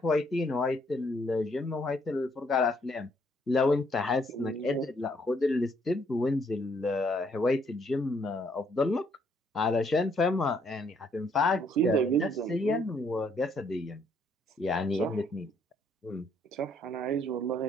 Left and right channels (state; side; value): normal; both; correlation 0.68